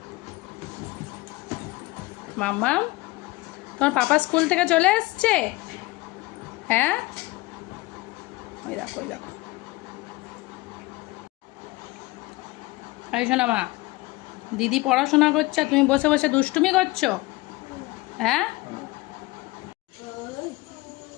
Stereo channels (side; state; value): right; quieter; 21.1 dB